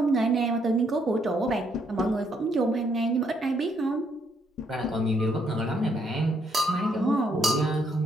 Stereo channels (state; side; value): normal; both; correlation 0.72